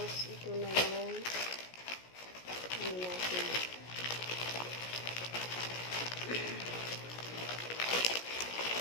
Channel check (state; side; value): late; right; 17 ms